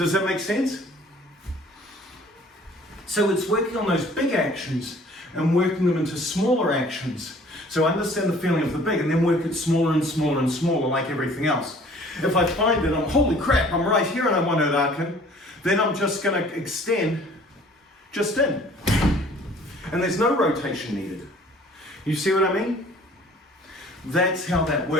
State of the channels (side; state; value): both; normal; correlation 0.53